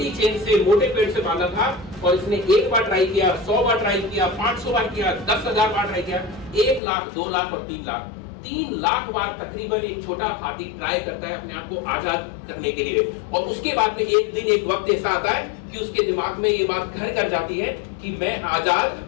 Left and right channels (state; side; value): drops out; right; at 6.8 s